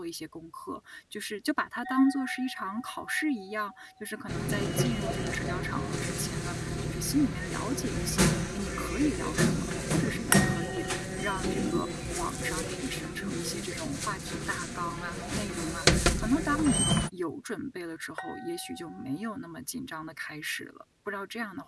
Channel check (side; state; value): both; identical; correlation 1.00